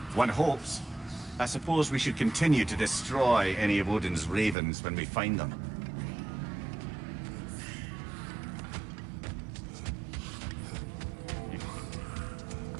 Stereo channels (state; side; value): drops out; left; at 4.5 s